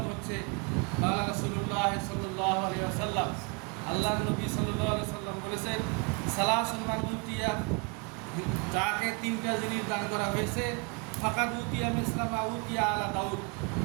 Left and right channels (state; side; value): quieter; left; 33.0 dB